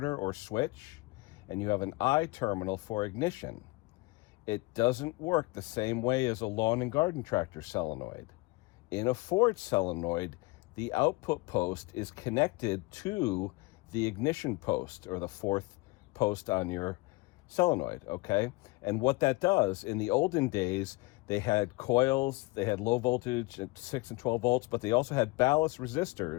or switch, and you have an I terminal for ignition. It doesn't work the same way as a lawn and garden tractor solenoid. In a Ford solenoid, the output post is connected to the ignition post, or the 4th post on your solenoid, okay? And what that does, in the olden days, they had coils, they had low voltage at 6 and 12 volts, but they also had ballast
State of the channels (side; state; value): right; quieter; 23.6 dB